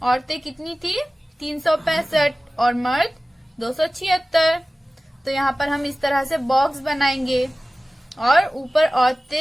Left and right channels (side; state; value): both; normal; correlation 0.97